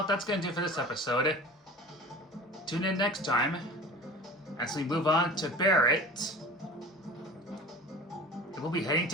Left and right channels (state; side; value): normal; both; correlation 0.38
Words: that's gonna do it for this episode. Tune in next time as we move on to Barrett. And we'll be heading